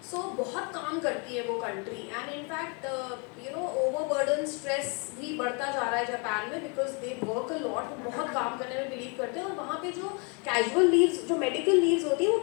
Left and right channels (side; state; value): right; quieter; 34.5 dB